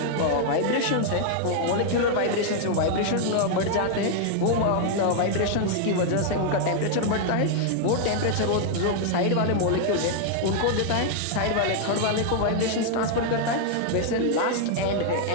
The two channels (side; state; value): both; different; correlation 0.00